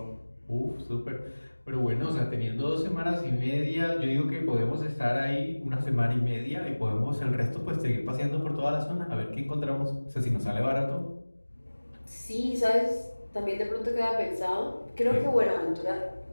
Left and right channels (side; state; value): both; inverted; correlation -1.00